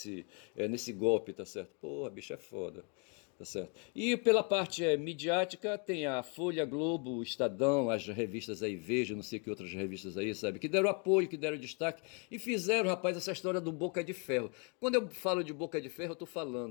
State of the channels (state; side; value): quieter; right; 36.0 dB